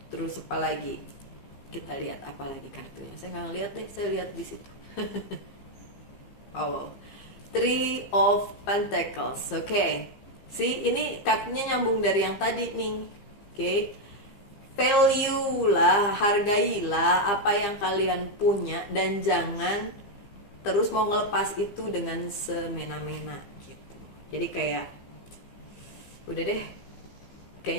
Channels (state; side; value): late; right; 15 ms